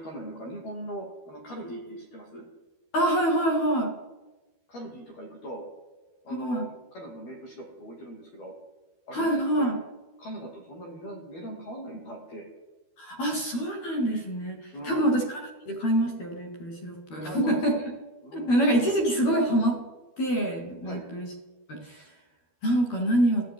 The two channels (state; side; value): late; right; 12 ms